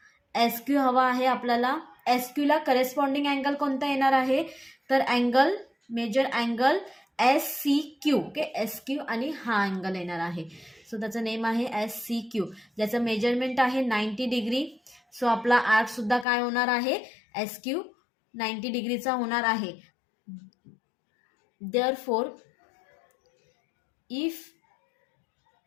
SQ हवा आहे आपल्याला. SQला करेस्पॉन्डिंग अँगल कोणता येणार आहे तर angle, measure angle SCQ. Okay, SQ आणि हा अँगल येणार आहे. सो त्याचं नेम आहे SCQ, ज्याचं मेजरमेंट आहे 90 डिग्री. सो आपला आर्क सुद्धा काय होणार आहे SQ 90 डिग्रीचा होणार आहे. Therefore if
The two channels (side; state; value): right; drops out; at 16.2 s